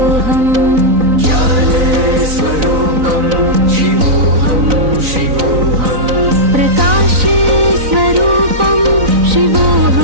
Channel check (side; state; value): left; late; 3.9 ms